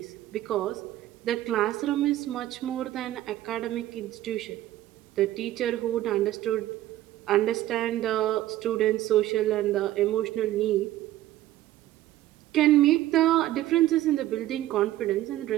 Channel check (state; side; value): quieter; left; 14.4 dB